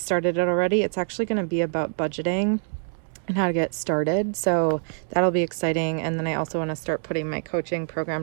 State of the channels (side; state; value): left; silent; digital silence